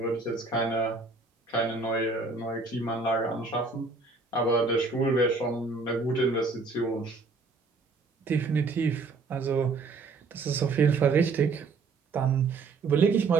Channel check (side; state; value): left; quieter; 4.1 dB